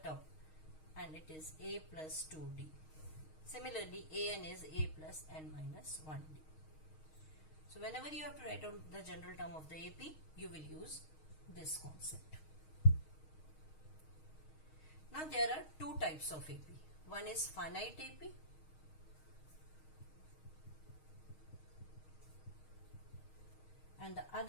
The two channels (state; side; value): late; right; 6.4 ms